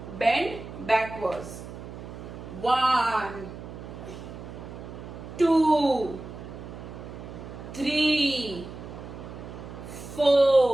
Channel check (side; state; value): right; noise; hum, 12 dB below the sound